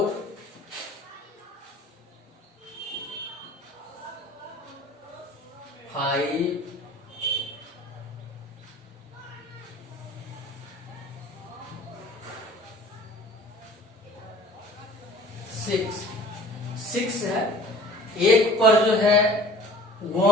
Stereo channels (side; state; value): both; normal; correlation 0.47